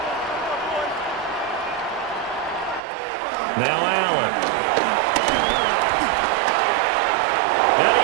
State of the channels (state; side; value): drops out; left; at 2.8 s